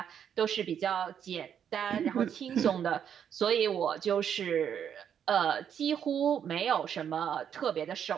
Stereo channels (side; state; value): left; quieter; 8.6 dB